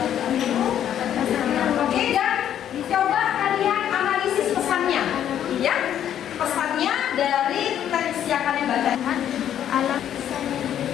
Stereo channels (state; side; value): quieter; right; 10.2 dB